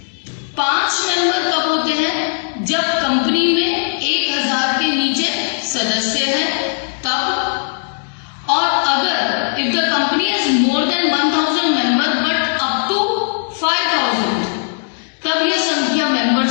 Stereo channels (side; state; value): right; silent; 68 dB below the other